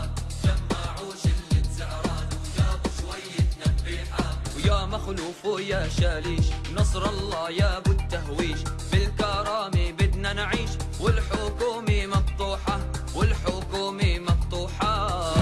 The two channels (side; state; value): both; identical; correlation 1.00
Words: جمعوا شلة زعران وجابوا شوية نبيحة. ويا مخلوف ويا شاليش، نصر الله يا ابو التهويش، بالكرامة بدنا نعيش، والحكومة مقطوحة والحكومة مقطوحة.